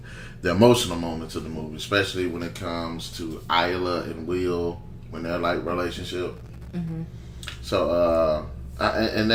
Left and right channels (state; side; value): identical; both; correlation 1.00